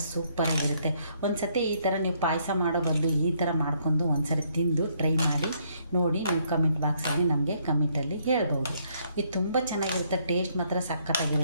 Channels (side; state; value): both; inverted; correlation -0.69